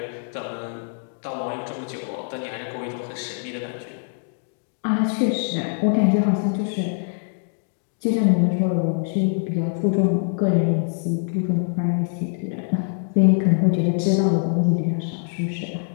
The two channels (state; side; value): silent; right; 63 dB below the other